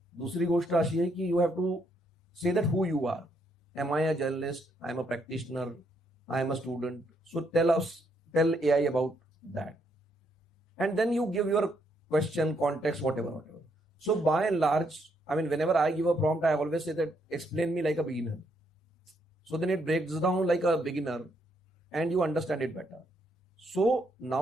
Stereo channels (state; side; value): normal; both; correlation 0.74